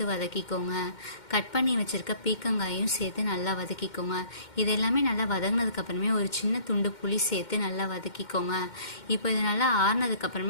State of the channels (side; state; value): right; late; 2.1 ms